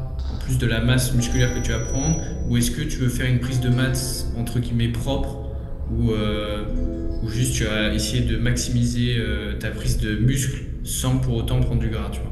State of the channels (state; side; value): identical; both; correlation 1.00